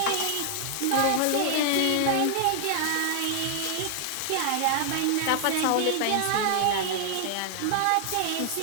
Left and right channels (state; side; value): different; both; correlation 0.00